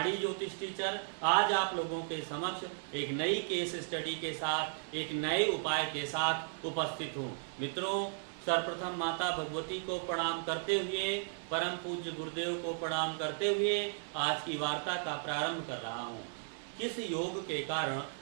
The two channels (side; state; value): left; silent; digital silence